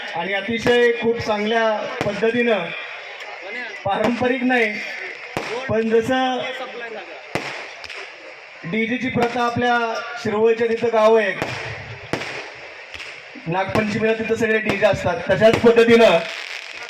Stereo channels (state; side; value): identical; both; correlation 1.00